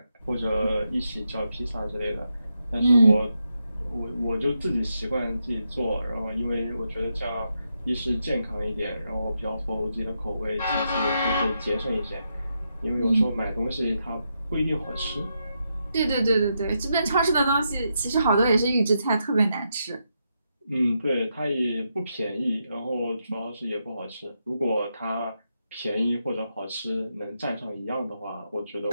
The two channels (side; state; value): both; inverted; correlation -0.83